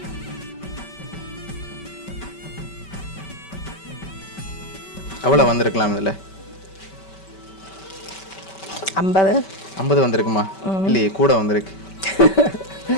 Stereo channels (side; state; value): right; late; 5.2 ms